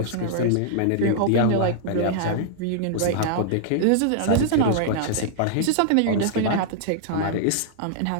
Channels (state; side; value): different; both; correlation -0.01